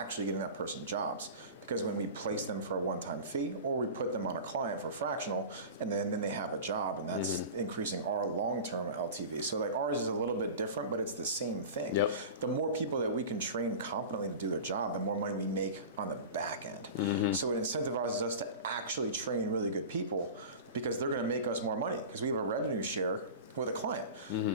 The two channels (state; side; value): inverted; both; correlation -0.32